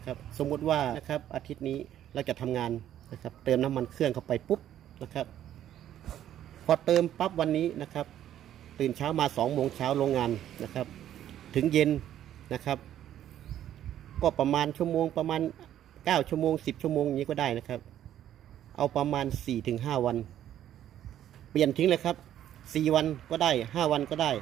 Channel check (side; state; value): left; quieter; 11.3 dB